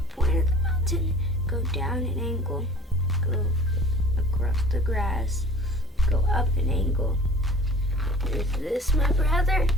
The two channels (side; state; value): both; normal; correlation 0.44